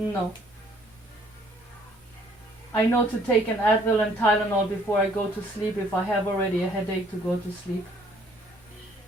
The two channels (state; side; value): normal; both; correlation 0.61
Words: I know to take an Advil and Tylenol before I go to sleep if I have already a headache to go to sleep.